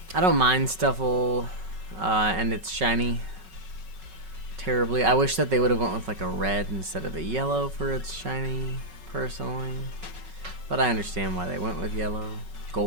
I don't mind Stuffle, and it's shiny terribly. I wish that they would have went with like a red instead of a yellow for its shiny, personally. But I understand why they went with yellow,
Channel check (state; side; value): late; left; 5.4 ms